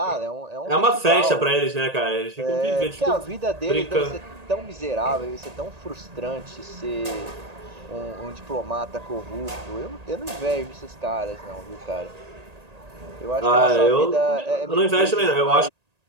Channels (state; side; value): late; left; 1.8 ms